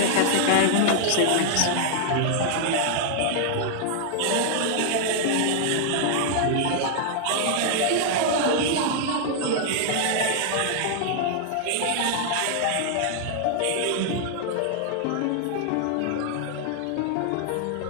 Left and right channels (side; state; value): both; different; correlation -0.01